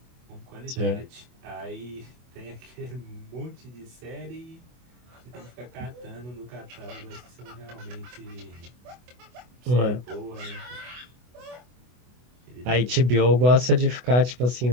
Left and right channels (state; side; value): late; left; 24 ms